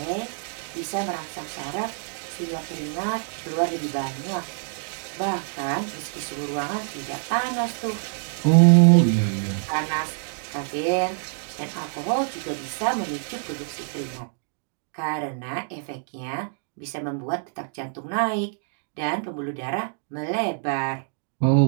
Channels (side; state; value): left; silent; digital silence